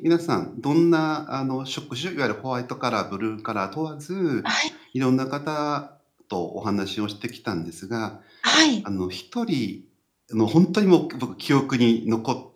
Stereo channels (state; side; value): identical; both; correlation 1.00